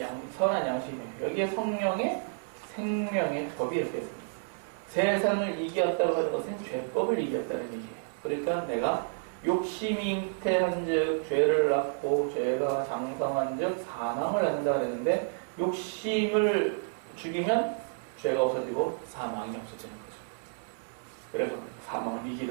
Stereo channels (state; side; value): silent; left; digital silence